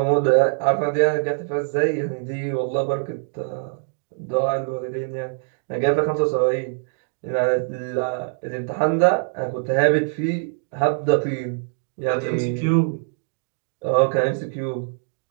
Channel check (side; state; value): left; silent; digital silence